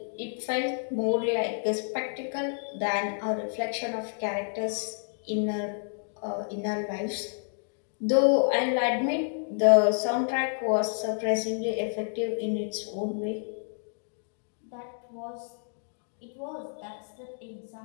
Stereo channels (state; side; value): silent; right; digital silence